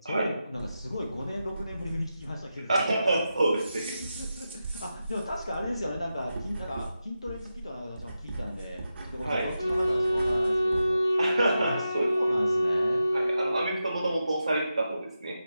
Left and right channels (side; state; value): both; inverted; correlation -0.90